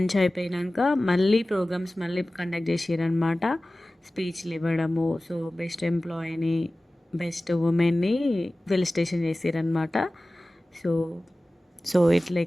అయిపోయినాక మళ్ళీ ప్రోగ్రామ్స్ కండక్ట్ చేసారనమాట. స్పీచ్లు ఇవ్వడము. సో బెస్ట్ ఎంప్లాయీని, బెస్ట్ ఉమెన్ని ఫెలిసిటేషన్ చేసారనమాట. సో ఇట్లా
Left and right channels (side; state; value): both; normal; correlation 0.97